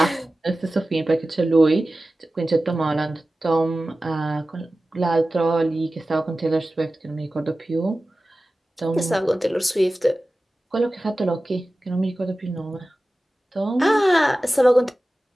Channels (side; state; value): both; normal; correlation 0.96